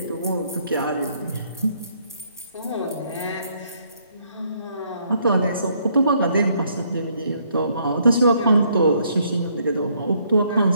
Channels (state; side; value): inverted; both; correlation -0.69